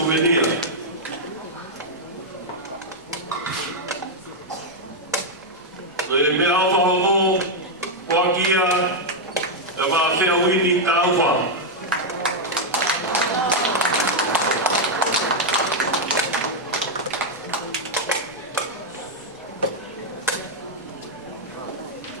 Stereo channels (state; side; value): normal; both; correlation -0.01